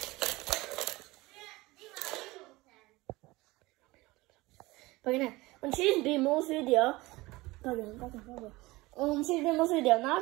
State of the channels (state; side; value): quieter; left; 20.9 dB